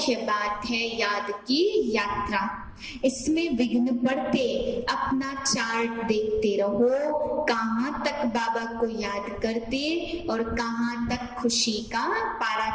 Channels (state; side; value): identical; both; correlation 1.00